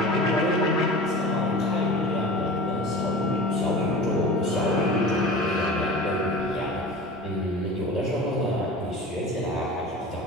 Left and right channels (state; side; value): normal; both; correlation 0.36